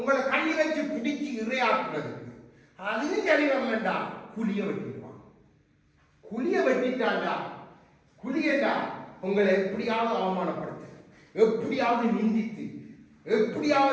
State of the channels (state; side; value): identical; both; correlation 1.00